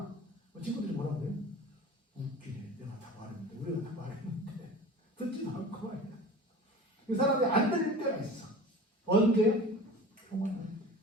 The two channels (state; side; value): normal; both; correlation 0.38